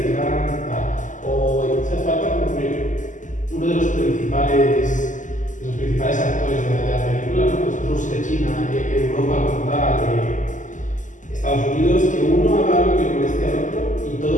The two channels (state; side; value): late; right; 0.37 ms